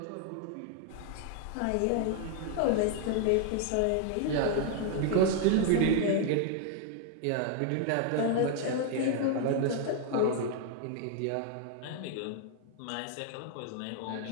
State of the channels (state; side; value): different; both; correlation 0.00